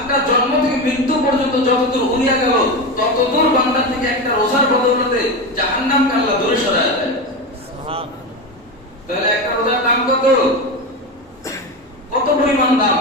জন্ম থেকে মৃত্যু পর্যন্ত যতদূর উড়িয়া গেল, ততদূর বান্দা থেকে একটা রোজার বদৌলতে জাহান্নামকে আল্লাহ দূরে সরায় দেয়। তাহলে একটা রোজার দাম কত? কত পরিমাণ দাম!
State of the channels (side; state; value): both; normal; correlation 0.19